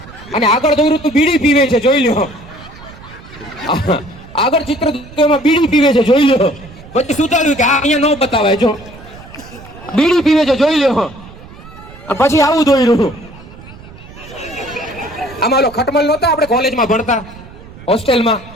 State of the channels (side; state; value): right; noise; rumble, 19 dB below the sound